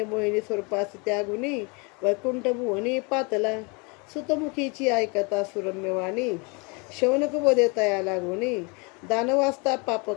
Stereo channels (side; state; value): right; quieter; 31.0 dB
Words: मोहिनी स्वरूपास त्यागुनी वैकुंठ भुवनी पातला. सुतमुखीची ऐकता सुरम्यवाणी शौनक वदे तया लागुनी. दानवास्ता